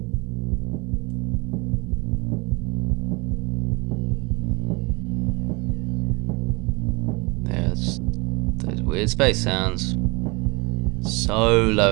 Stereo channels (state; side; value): quieter; left; 27.2 dB